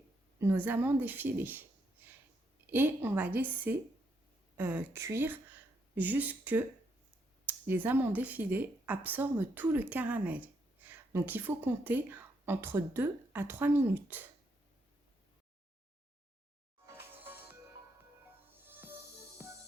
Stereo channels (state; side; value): normal; both; correlation 0.77